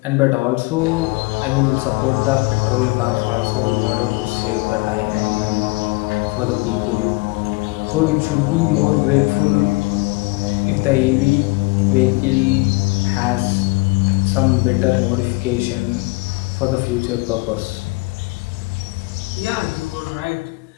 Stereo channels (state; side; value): quieter; right; 25.5 dB